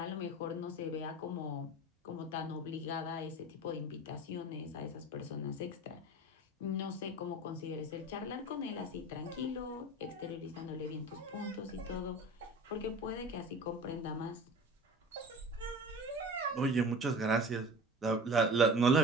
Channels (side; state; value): both; normal; correlation 0.38